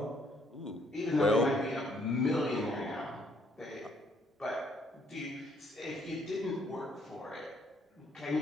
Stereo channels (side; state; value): both; normal; correlation 0.67